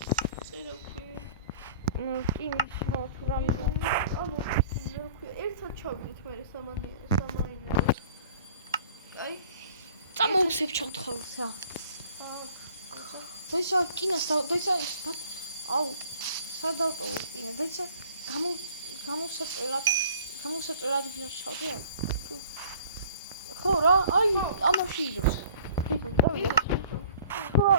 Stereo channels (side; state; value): both; inverted; correlation -0.52